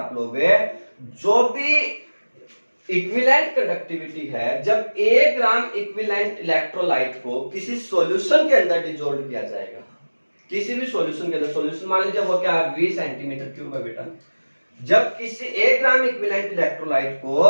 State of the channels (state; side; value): inverted; both; correlation -1.00